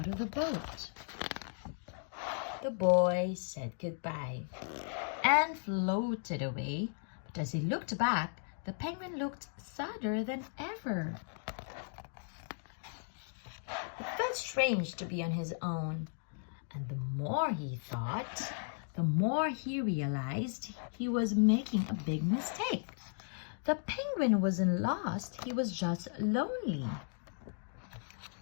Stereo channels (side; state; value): right; silent; digital silence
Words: of the boat. The boy said goodbye and floated away, but as he looked back, the penguin looked sadder than ever. It felt strange to be on his own, and the more he thought, the more he realized he was making a big mistake. The penguin wasn't lost, he was just lonely.